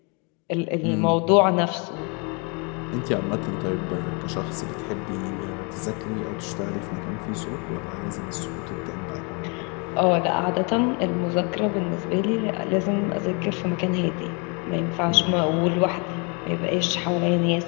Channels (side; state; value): right; quieter; 33.3 dB